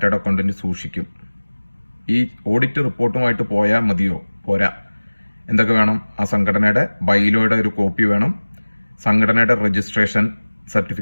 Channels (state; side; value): inverted; both; correlation -1.00